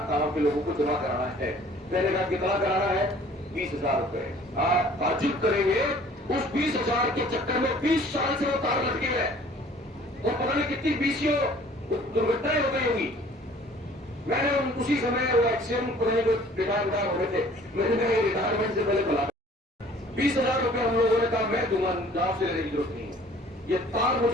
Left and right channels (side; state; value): both; normal; correlation 0.52